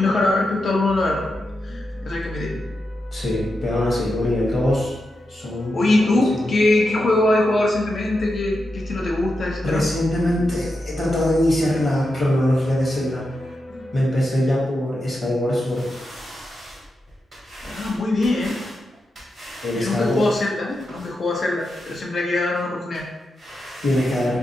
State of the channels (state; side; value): normal; both; correlation 0.88